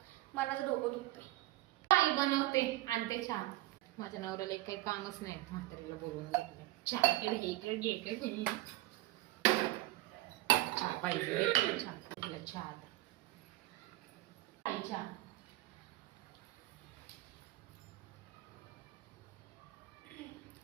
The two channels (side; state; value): left; quieter; 17.2 dB